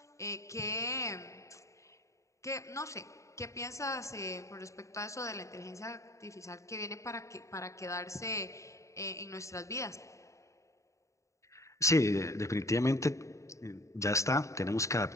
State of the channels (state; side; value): late; right; 0.15 ms